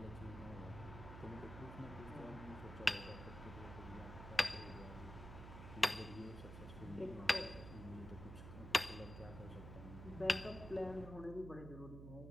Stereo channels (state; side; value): noise; right; hum, 10 dB below the sound